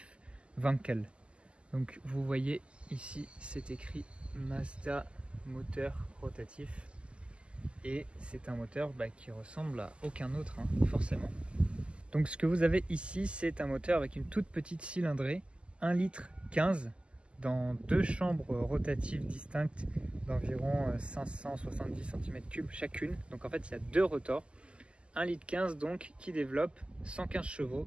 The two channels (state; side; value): late; left; 0.053 ms